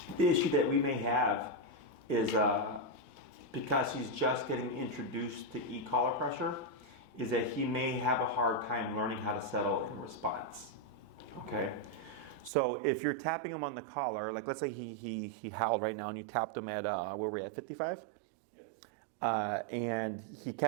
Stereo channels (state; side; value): drops out; left; at 12.5 s